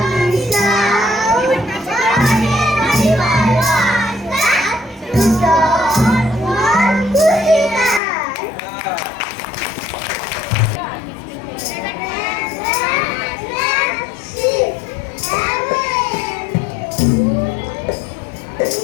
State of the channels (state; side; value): drops out; right; at 8.0 s